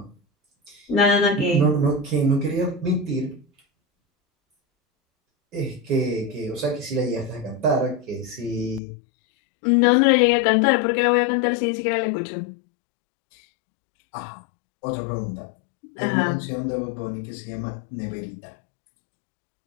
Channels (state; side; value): drops out; right; at 8.8 s